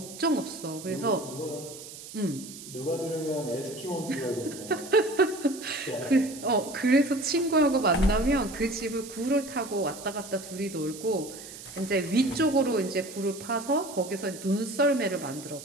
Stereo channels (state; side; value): noise; right; hiss, 14 dB below the sound